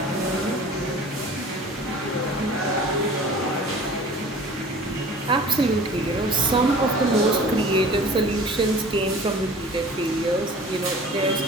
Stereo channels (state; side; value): normal; both; correlation 0.44